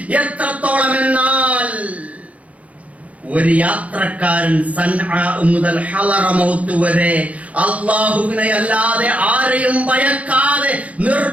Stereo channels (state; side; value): late; left; 0.067 ms